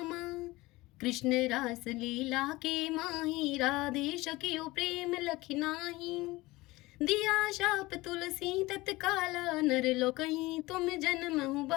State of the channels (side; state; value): right; quieter; 20.4 dB